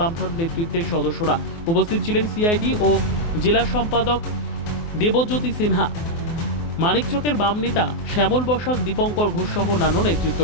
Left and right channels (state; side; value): late; right; 24 ms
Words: নেতৃত্বের সদস্যরা। উপস্থিত ছিলেন সিআইডি ও জেলা সম্পাদক দেবজ্যোতি সিনহা, মানিকচকের বাম নেতা শ্যামল বসাক, দীপঙ্কর ঘোষ সহ অন্যান্য